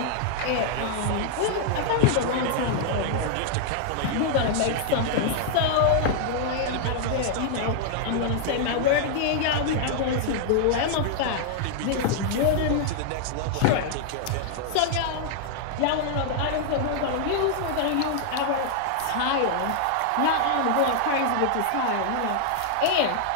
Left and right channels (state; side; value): different; both; correlation -0.01